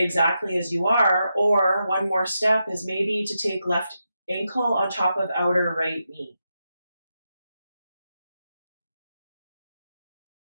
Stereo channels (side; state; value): both; inverted; correlation -0.86